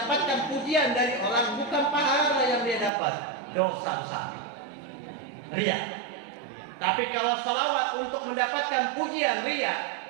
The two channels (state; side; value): drops out; left; at 2.9 s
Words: pujian dari orang, bukan pahala yang dia dapat, dosa besar, riya. Tapi kalau salawat untuk mendapatkan pujian riya,